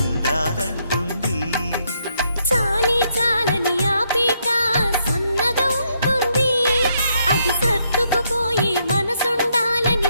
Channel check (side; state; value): both; inverted; correlation -0.75